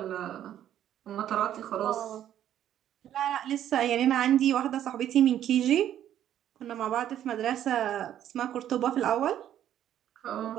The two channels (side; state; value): left; quieter; 11.1 dB